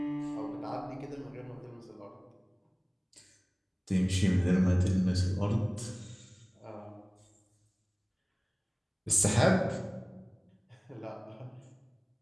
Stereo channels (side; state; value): both; identical; correlation 1.00